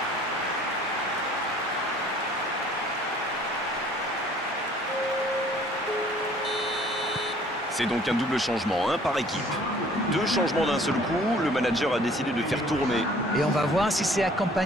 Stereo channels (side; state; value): both; normal; correlation 0.55